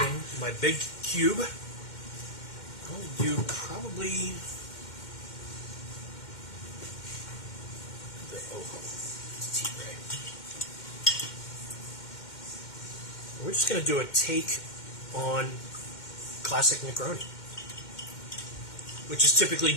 my big cube. I'll only do probably the tea tray. We're just going to do a take on classic Negroni, which is typically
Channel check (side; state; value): right; late; 2.1 ms